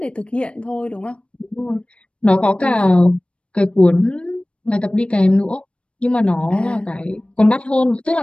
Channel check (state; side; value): late; right; 0.059 ms